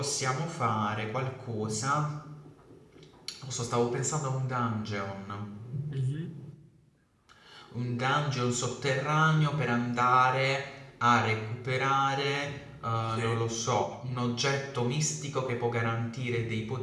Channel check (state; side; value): identical; both; correlation 1.00